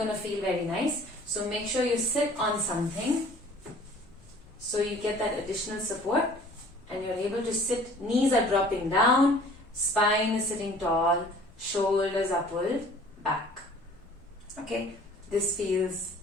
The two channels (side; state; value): both; normal; correlation 0.50